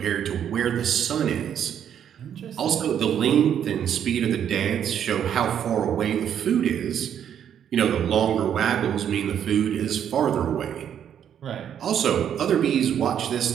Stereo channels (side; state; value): left; quieter; 9.2 dB